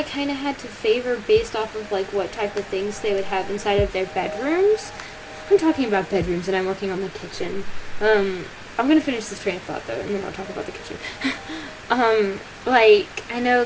kind of had to favor based off of what type of things they would have inside of their bedrooms. I'm talking about bedrooms, and I'm working on the kitchen. I'm gonna finish this train of thought, though, and then I'll talk about the kitchen. I know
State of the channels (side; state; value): both; identical; correlation 1.00